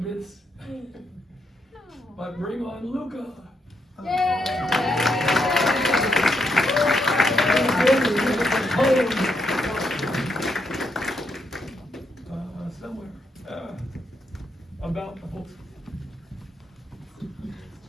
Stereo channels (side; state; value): both; normal; correlation 0.79